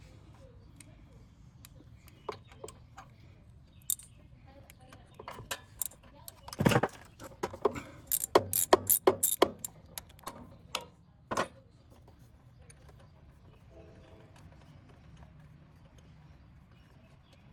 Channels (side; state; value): both; identical; correlation 1.00